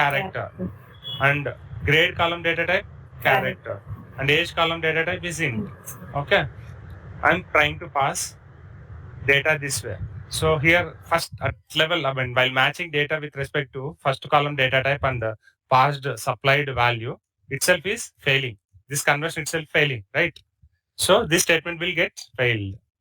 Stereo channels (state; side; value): identical; both; correlation 1.00